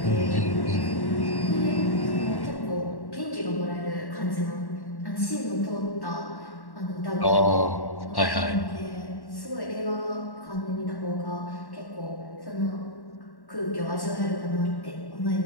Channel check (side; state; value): right; late; 1.1 ms